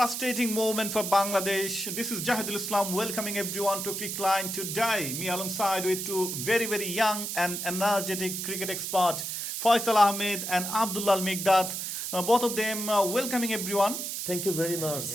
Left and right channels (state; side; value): noise; right; hiss, 4 dB below the sound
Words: moment for Bangladesh. This is Jahidul Islam welcoming everyone to Cricket Line today. Me alongside with two very young and energetic cricket expert, Faisal Ahmed and Abdullah Al Migdad. Both of them welcoming everyone. Thank you very much.